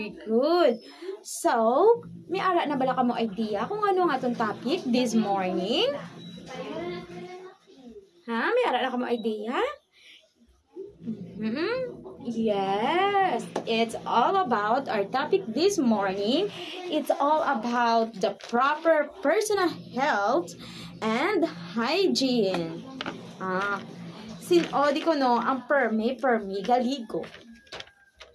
good. So, may ara na bala ka mo idea kung ano nga itong topic this morning? Ha? May ara na ka mo idea? Yes, it's all about our topic this morning. It's all about the proper personal health and hygiene. Di ko no, ang permi galigo.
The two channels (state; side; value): identical; both; correlation 1.00